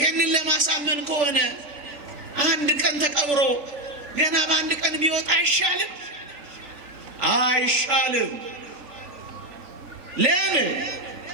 ለማሳመን ከሆነ አንድ ቀን ተቀብሮ ገና በአንድ ቀን ቢወጣ አይሻልም? አይሻልም። ለምን?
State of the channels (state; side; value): late; left; 3.5 ms